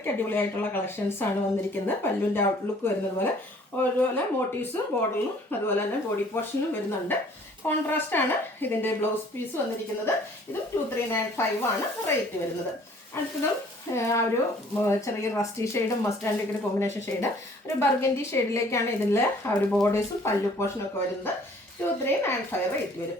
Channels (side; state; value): both; normal; correlation 0.56